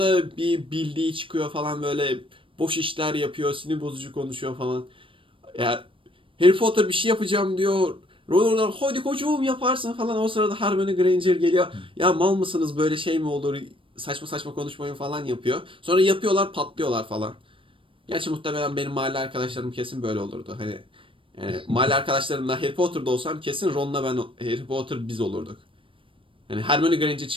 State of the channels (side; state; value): left; late; 0.25 ms